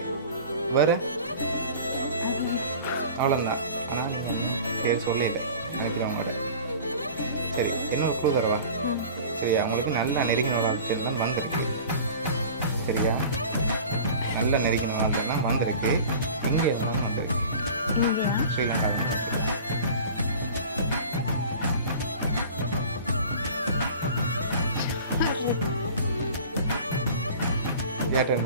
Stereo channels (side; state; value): both; inverted; correlation -0.41